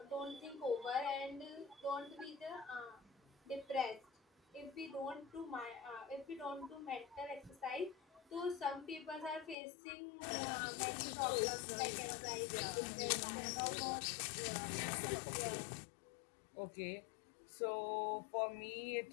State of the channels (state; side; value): drops out; right; at 9.6 s